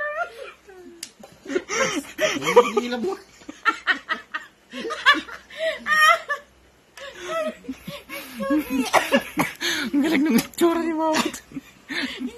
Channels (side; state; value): both; identical; correlation 1.00